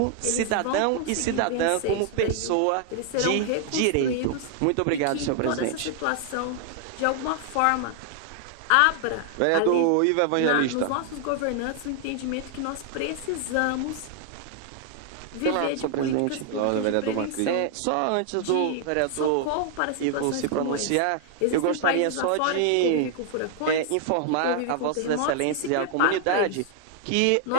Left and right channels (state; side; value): different; both; correlation 0.00